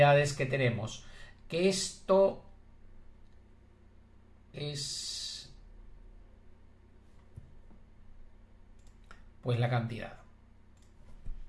que tenemos, que esto es pues la cantidad.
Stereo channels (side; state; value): both; identical; correlation 1.00